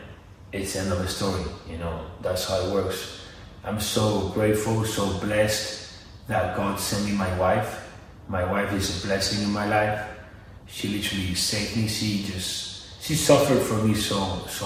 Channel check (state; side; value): identical; both; correlation 1.00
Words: It's the end of the story, you know. That's how it works. I'm so grateful, so blessed that God sent me my wife. My wife is a blessing in my life. She literally saved me. She suffered for me so